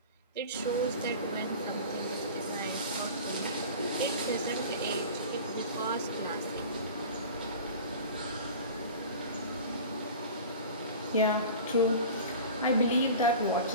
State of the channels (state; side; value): inverted; both; correlation -0.37